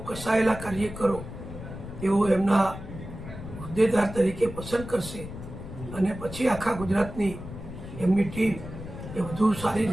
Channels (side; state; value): left; noise; rumble, 11 dB below the sound